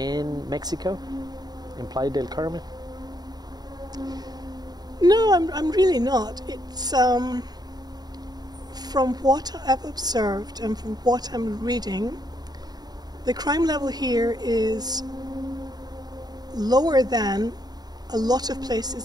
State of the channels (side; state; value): left; late; 0.19 ms